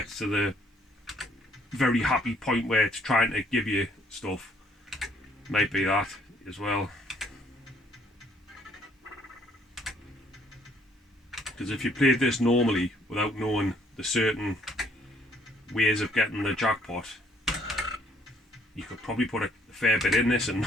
to the very happy point where it's trying to give you stuff. Might be that as well. Because if you played this normally without knowing the certain ways of getting the jackpot, you could probably put a fair bit in this and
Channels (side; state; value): both; normal; correlation 0.64